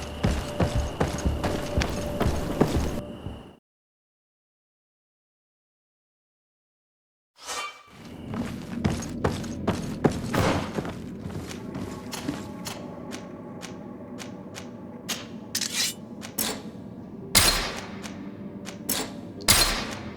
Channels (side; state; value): both; identical; correlation 1.00